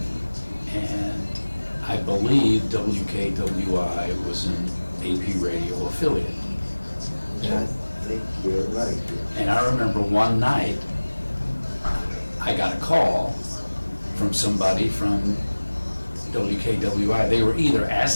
and I believe WKWI was an AP radio affiliate. I think you're right. And I remember one night I got a call from somebody from WKWI. They were either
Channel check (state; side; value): inverted; both; correlation -1.00